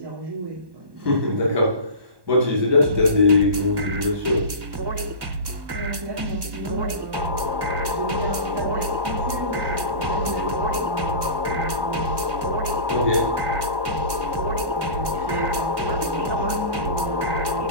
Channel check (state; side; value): late; left; 1.7 ms